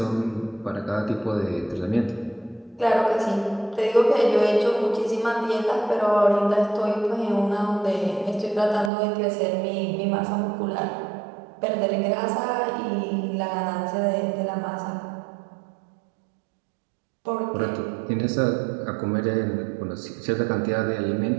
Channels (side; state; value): left; drops out; at 8.9 s